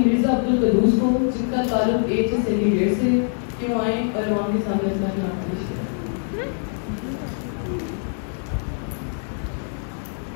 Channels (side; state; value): right; silent; 63 dB below the other